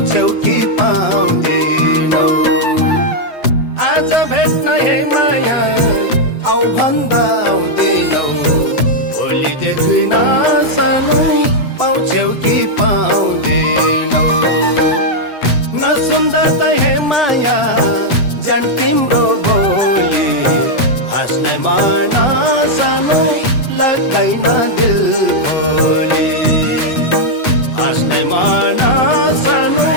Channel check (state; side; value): late; right; 7.9 ms